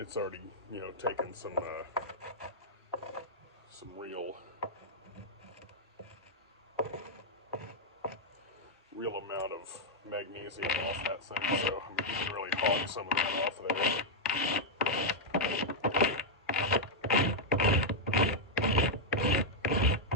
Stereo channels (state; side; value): normal; both; correlation -0.04